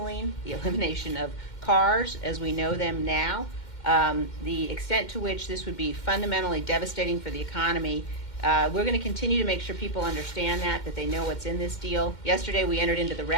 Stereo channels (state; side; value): late; right; 2.1 ms